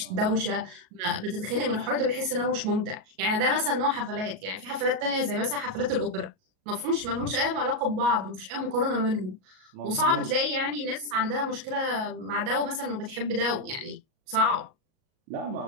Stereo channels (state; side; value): late; left; 38 ms